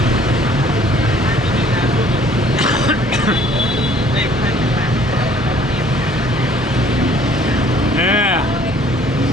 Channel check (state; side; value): normal; both; correlation 0.57